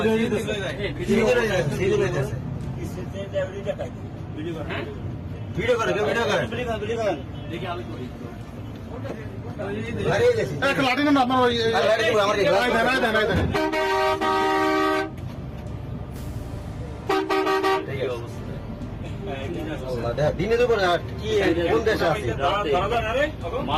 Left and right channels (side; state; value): both; identical; correlation 1.00